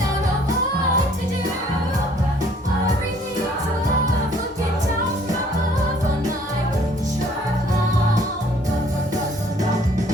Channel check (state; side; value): normal; both; correlation 0.59